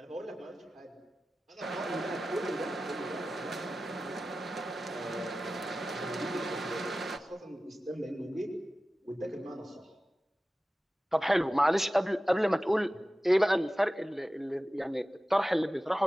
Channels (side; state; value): both; normal; correlation 0.95